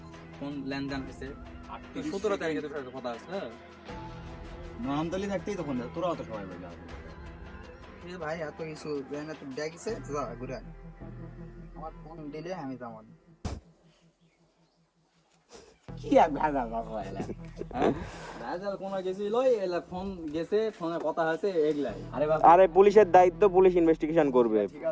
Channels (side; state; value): both; identical; correlation 1.00